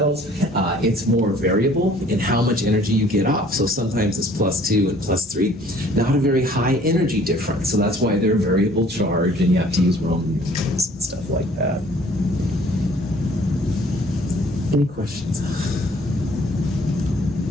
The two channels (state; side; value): normal; both; correlation 0.55